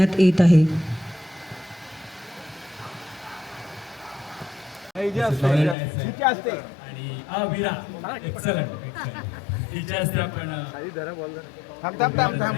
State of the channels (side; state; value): right; drops out; at 5.8 s